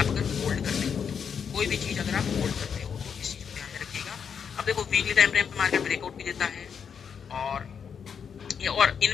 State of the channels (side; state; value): right; quieter; 7.0 dB